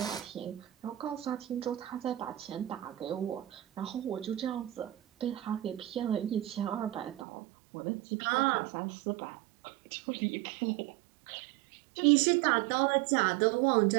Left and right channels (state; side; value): drops out; left; at 7.2 s